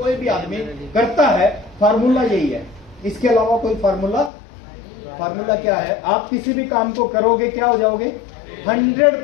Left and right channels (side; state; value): right; drops out; at 4.3 s